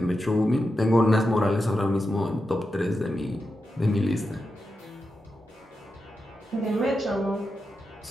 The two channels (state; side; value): normal; both; correlation 0.89